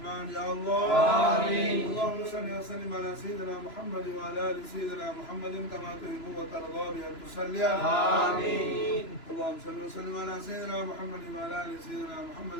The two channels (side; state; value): right; late; 3.0 ms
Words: يا الله. آمين. اللهم صل وسلم على سيدنا محمد وعلى آل سيدنا محمد كما تحب وترضى بأن تصلي عليه. آمين. اللهم صل وسلم على سيدنا محمد وعلى آل سيدنا محمد